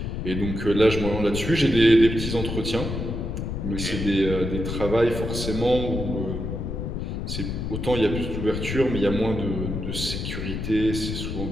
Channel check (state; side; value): noise; left; rumble, 4 dB below the sound